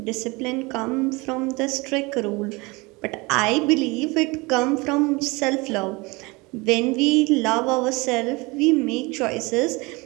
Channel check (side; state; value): left; quieter; 25.2 dB